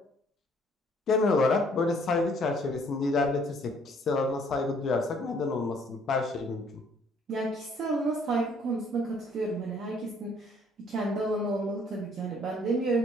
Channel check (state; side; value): normal; both; correlation 0.61